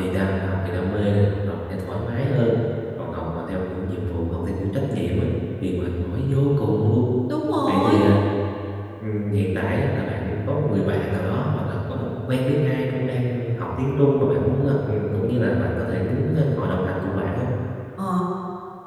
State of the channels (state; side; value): identical; both; correlation 1.00